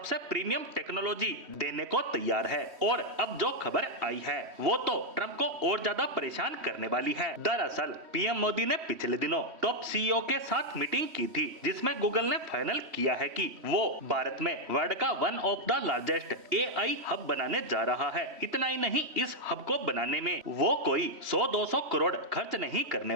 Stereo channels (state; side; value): late; left; 3.1 ms